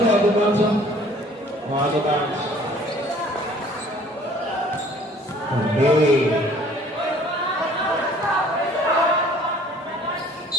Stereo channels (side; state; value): both; normal; correlation 0.53